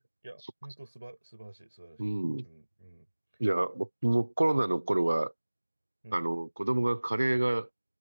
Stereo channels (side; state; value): both; inverted; correlation -1.00